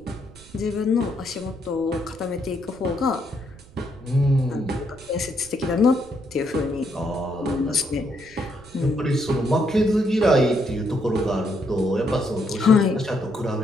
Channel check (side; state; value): right; noise; rumble, 23 dB below the sound